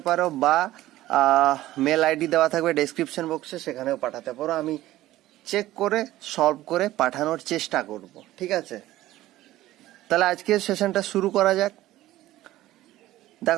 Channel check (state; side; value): quieter; left; 15.5 dB